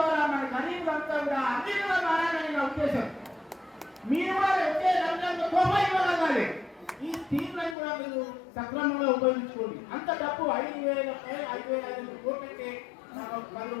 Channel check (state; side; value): drops out; right; at 7.8 s